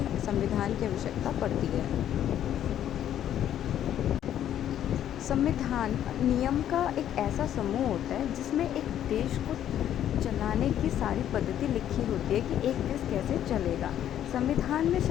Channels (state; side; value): quieter; right; 10.8 dB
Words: संविधान की आवश्यकता पड़ती है। संविधान नियम का एक ऐसा समूह होता है जिसमें एक देश को चलाने की सारी पद्धति लिखी होती है कि एक देश कैसे चलेगा। संविधान में